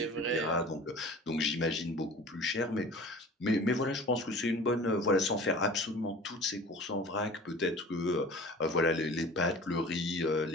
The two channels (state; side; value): normal; both; correlation 0.41